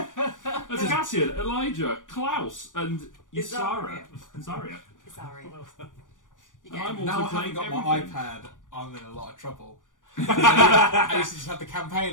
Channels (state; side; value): late; right; 0.88 ms